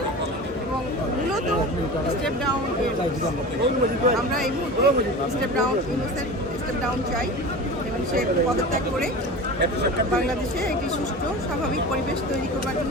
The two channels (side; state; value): both; normal; correlation 0.32